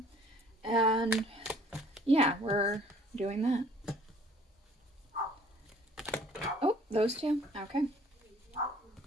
and yeah, we're doing that. Oh, those two? Okay.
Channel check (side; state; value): both; normal; correlation 0.55